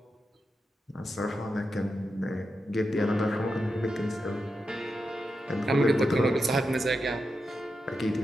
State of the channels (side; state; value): both; normal; correlation 0.87